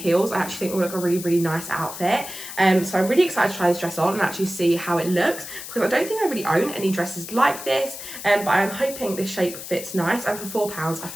I actually think will look a really nice outfit. So I'm really excited to try this dress on and actually see how it looks, because I don't think I really own any dresses like this, but I'm hoping this shape fits nice, and for £4 I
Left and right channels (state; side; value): noise; left; hiss, 10 dB below the sound